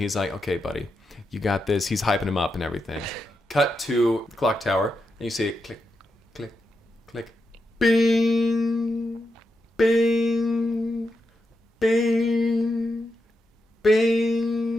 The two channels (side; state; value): both; normal; correlation 0.86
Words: like, "Okay, buddy, you got this." He's hyping him up and everything. Cut to the clock tower, and you see it click, click, click, bing, bing, bing,